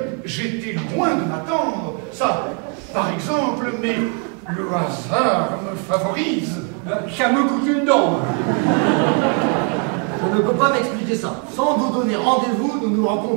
j'étais loin de m'attendre. Ça, par exemple, mais le hasard me favorise. Ça me coûte une dent. Je ne peux pas m'expliquer ça. Sans vous donner rendez-vous, nous nous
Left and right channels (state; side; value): quieter; left; 39.3 dB